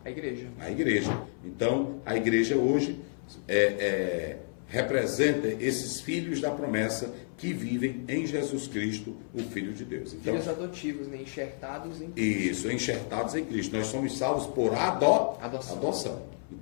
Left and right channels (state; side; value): silent; right; 58 dB below the other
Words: A igreja. A igreja. Então, a igreja hoje representa esses filhos da promessa que vivem em Jesus Cristo, o Filho de Deus. Então, filhos adotivos, né? Enxertados em Cristo. Isso, enxertados em Cristo. Nós somos salvos por adoção.